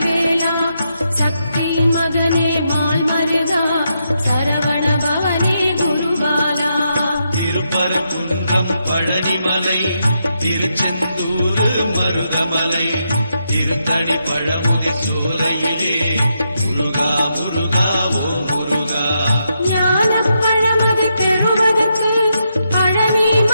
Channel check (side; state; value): both; inverted; correlation -0.82